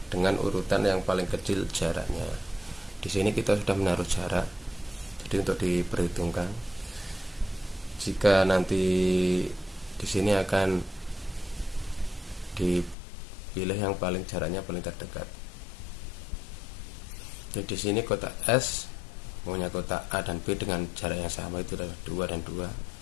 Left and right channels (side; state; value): right; drops out; at 13.0 s